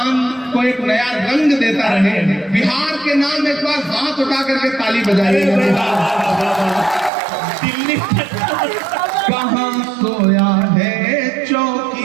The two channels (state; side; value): drops out; left; at 7.1 s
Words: को एक नया रंग देता रहे। बिहार के नाम एक बार हाथ उठा करके ताली बजाइए। दिल्ली कहां सोया है